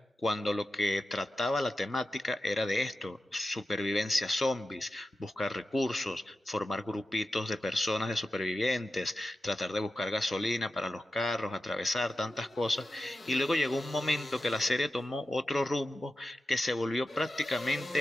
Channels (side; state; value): both; normal; correlation 0.91